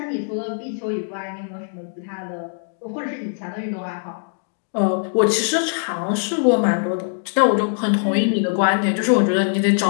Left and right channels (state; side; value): silent; right; digital silence